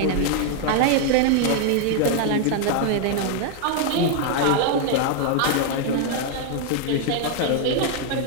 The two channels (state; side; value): different; both; correlation 0.00